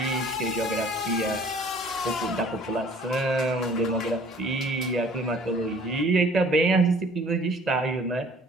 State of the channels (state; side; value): normal; both; correlation 0.53